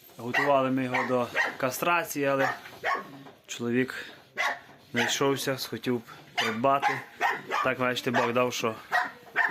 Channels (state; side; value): identical; both; correlation 1.00